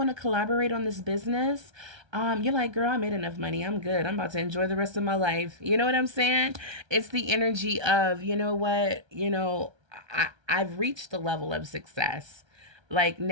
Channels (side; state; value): left; late; 1.3 ms